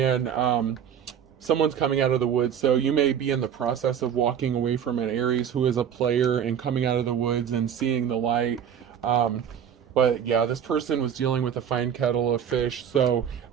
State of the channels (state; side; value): quieter; left; 8.7 dB